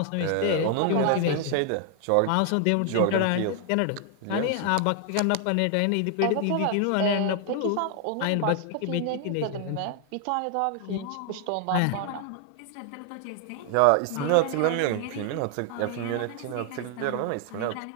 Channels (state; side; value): different; both; correlation 0.00